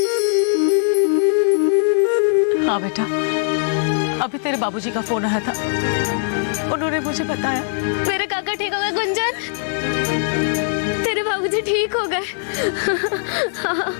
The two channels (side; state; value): right; silent; 66 dB below the other